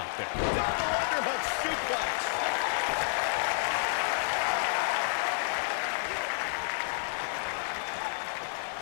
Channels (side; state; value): right; silent; 58 dB below the other